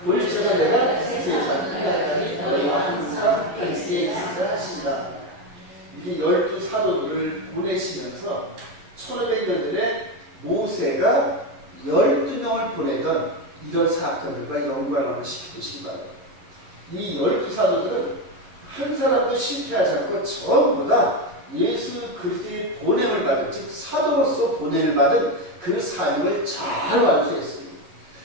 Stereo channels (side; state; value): left; late; 11 ms